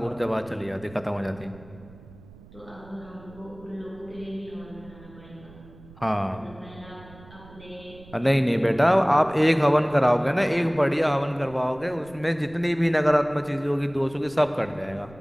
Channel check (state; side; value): noise; right; rumble, 21 dB below the sound